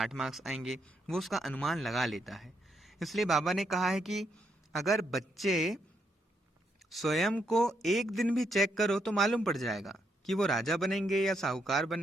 मार्क्स आएंगे, वो उसका अनुमान लगा लेता है। इसलिए बाबा ने कहा है कि अगर बच्चे स्वयं को एक दिन भी चेक करो तो मालूम पड़ जाएगा कि वो राजा बनेंगे या साहूकार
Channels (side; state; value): both; normal; correlation 0.77